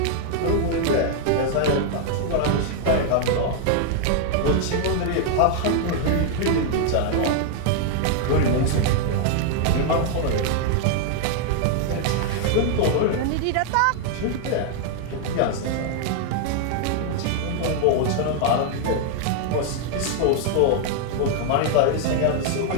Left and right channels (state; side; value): different; both; correlation 0.00